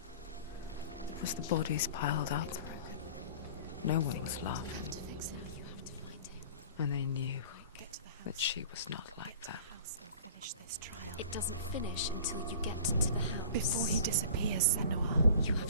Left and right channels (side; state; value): both; inverted; correlation -0.43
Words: as the bodies piled up, no one was laughing. And they knew that she was not like that. It doesn't finish until you get to the house. Before he disappears, senua. You